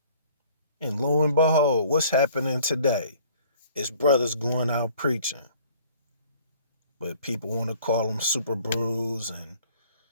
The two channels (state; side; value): inverted; both; correlation -0.54